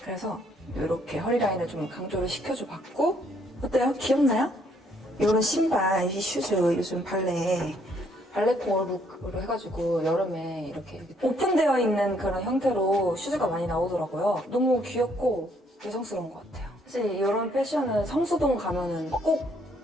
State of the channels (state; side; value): normal; both; correlation 0.68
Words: 그래서 이렇게 허리 라인을 좀 강조를 시켜줘 봤고, 어때요? 귀엽나요? 이런 신발, 이 슈즈 요즘 발레코어 룩으로 해가지고 여름에 이렇게 오픈되어 있는 그런 형태로 슈즈가 많이 나오더라고요. 너무 귀엽고 여성스러운 것 같아요. 사실 이런 패션은 성수동 가면은 꼭